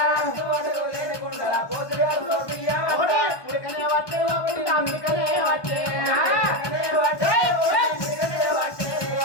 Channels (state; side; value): late; right; 1.2 ms